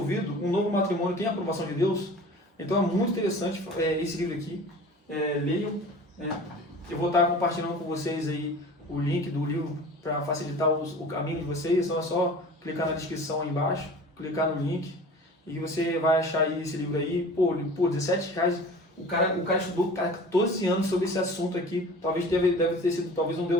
um novo matrimônio tem a aprovação de Deus? Então é muito interessante esse livro aqui. Leiam. Eu vou estar compartilhando com vocês aí o link do livro para facilitar o caminho de vocês. Então é só clicar na descrição aí embaixo, clicar no link e você vai achar aí esse livro aí. Por R$17. O cara estudou 14 anos sobre esse assunto aqui. Talvez deve ter sido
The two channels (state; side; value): normal; both; correlation 0.41